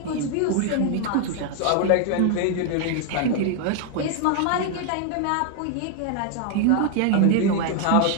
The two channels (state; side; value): different; both; correlation 0.00